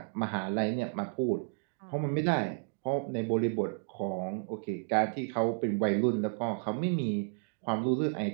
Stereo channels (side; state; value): left; silent; digital silence